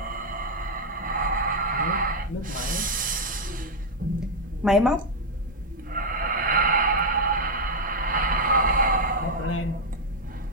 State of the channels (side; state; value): both; normal; correlation 0.02